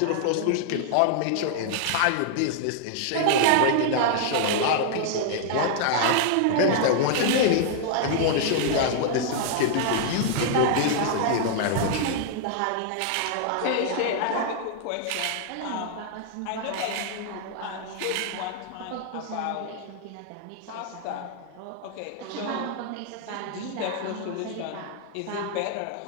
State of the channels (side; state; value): both; different; correlation -0.01